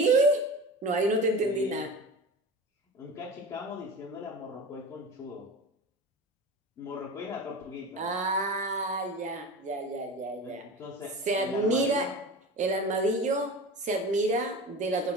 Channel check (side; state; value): both; normal; correlation 0.32